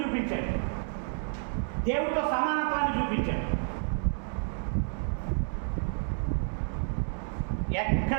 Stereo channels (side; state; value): left; silent; 58 dB below the other